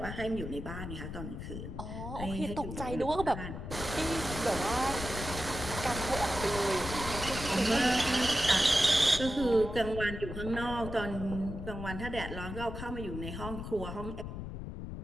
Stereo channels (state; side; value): noise; left; rumble, 7 dB below the sound